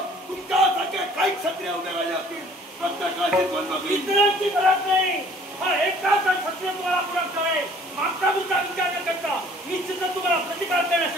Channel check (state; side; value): normal; both; correlation 0.54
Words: तुमच्यासारखे काही क्षत्रिय उद्या राहिले असतील. प्रत्येकाची द्वंद्व बघली. इतरांची गरज नाही. हा एकाच क्षत्रिय तुम्हाला पुरवठा आहे. मागचा तुमचा विचार न करता निश्चितच तुम्हाला प्रतिकार